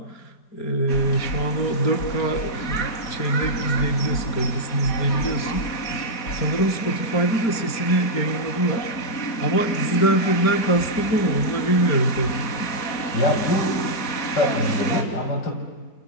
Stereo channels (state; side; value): late; right; 4.4 ms